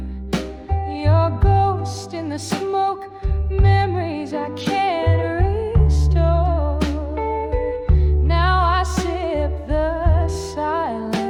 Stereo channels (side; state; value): both; identical; correlation 1.00